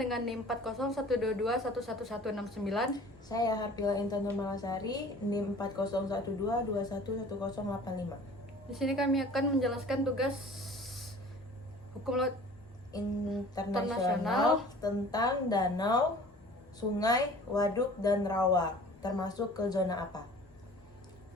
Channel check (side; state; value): both; normal; correlation 0.46